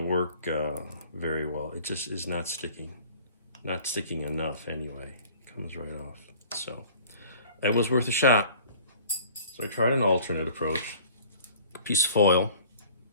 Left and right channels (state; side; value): inverted; both; correlation -0.50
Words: work very well. It just is not sticking enough anyway. It comes right off. So it was worth a shot. So I tried an alternate approach. A piece of foil,